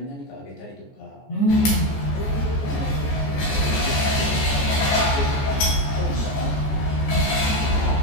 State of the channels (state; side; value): late; right; 14 ms